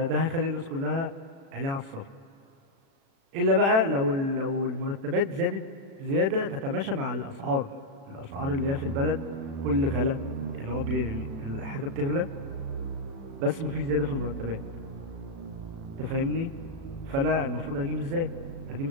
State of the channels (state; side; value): late; left; 36 ms